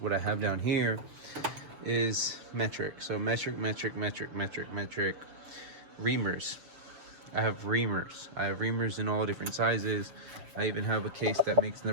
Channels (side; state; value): left; late; 6.8 ms